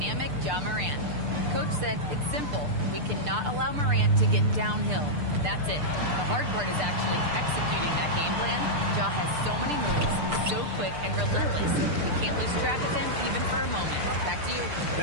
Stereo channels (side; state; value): left; late; 6.7 ms